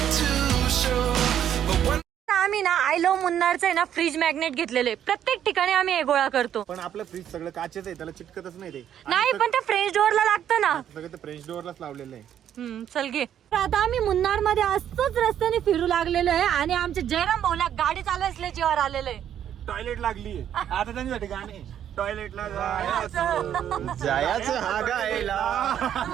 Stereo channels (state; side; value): quieter; left; 10.0 dB